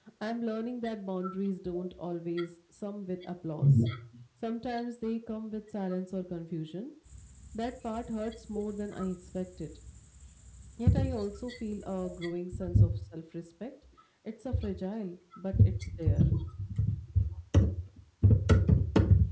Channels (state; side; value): identical; both; correlation 1.00